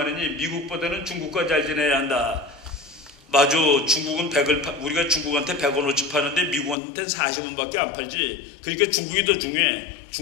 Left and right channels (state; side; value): drops out; right; at 6.8 s